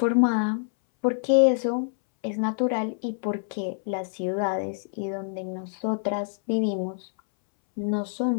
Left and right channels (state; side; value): silent; right; 61 dB below the other